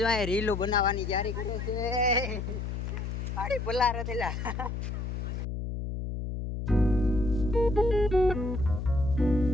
રીલો બનાવવાની તૈયારી કરે છે. આડી પલાર તેલા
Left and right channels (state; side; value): noise; left; hum, 4 dB below the sound